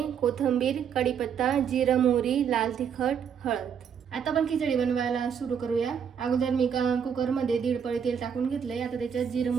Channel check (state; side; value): quieter; left; 7.6 dB